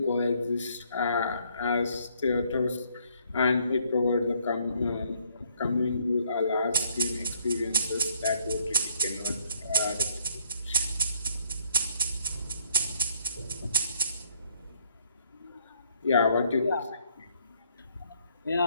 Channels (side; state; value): both; inverted; correlation -0.67